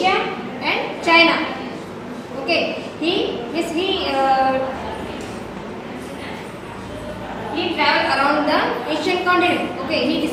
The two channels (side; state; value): both; identical; correlation 1.00